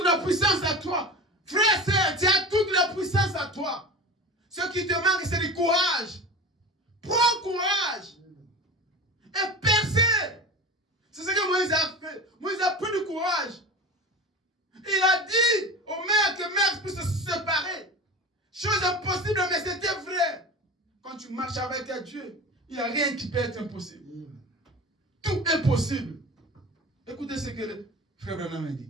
la puissance à toi. Frère, sœur, tu as toute la puissance à toi. Ce qui te manque, c'est du courage. Prends courage. Et percez. C'est ce que Moïse a fait. Moïse a pris du courage. Il a dit aux mers que mers puissent se séparer. Chose impossible, mais c'était vrai. Quand tu marches avec Dieu, il n'y a rien qui peut être impossible. Tout est possible. Écoutez ce que le frère Branham a dit.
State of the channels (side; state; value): both; normal; correlation 0.32